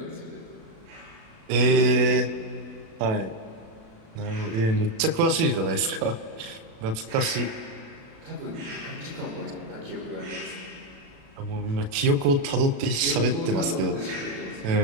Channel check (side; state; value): left; late; 36 ms